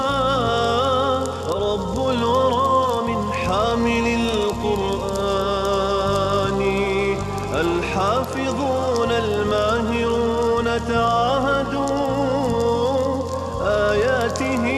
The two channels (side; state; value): both; identical; correlation 1.00